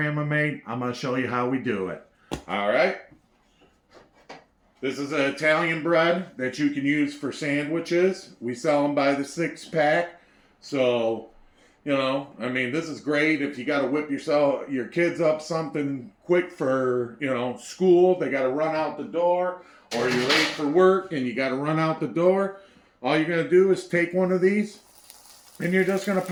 made. I'm going to show you how we do it, all right? This is an Italian bread that you can use for sandwiches. We sell them by the 6-pack, so... this is great if you got to whip your kids up something quick for, school. They got to run out the door, or you're late for work and you got to run out the door. All you're going to do is take one of these and you're just going to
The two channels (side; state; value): both; identical; correlation 1.00